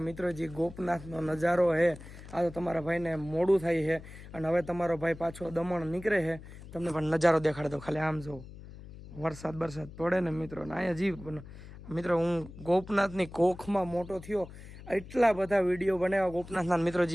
મિત્રો જે ગોપનાથનો નજારો હે, આ તો તમારા ભાઈને મોડું થાય છે અને હવે તમારો ભાઈ પાછો દમણ નીકળે છે। તમને પણ નજારો દેખાડે તો ખાલી આમ જો, વરસાદ બરસાદ પડે ને મિત્રો, ને અહીંયા જીવ મિત્રો હું ગોપનાથની કોખમાં મોટો થયો, એટલા બધા વિડીયો બનાવ્યા ગોપનાથના મિત્રો।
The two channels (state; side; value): noise; left; hum, 16 dB below the sound